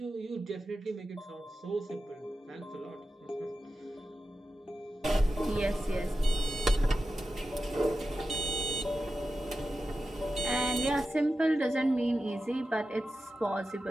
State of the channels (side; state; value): both; normal; correlation 0.92